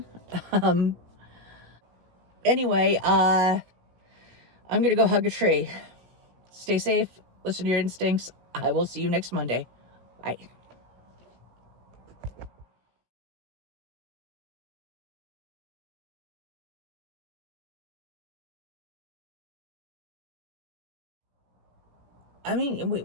Anyway, I'm going to go hug a tree. Stay safe. Listen to your instincts. I will see you next Monday. Bye. I mean,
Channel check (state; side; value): late; left; 16 ms